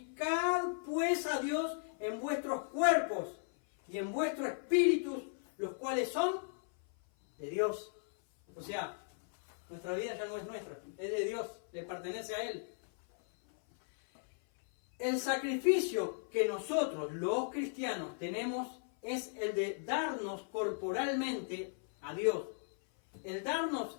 pues a Dios en vuestros cuerpos y en vuestros espíritus, los cuales son de Dios. O sea, nuestra vida ya no es nuestra, es de Dios, le pertenece a Él. El sacrificio que nosotros, los cristianos, tenemos es el de darnos corporalmente a Dios. El darnos,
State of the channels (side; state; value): right; silent; 54 dB below the other